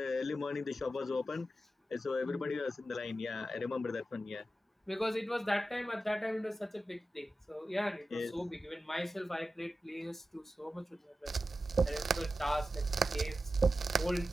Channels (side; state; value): both; normal; correlation 0.92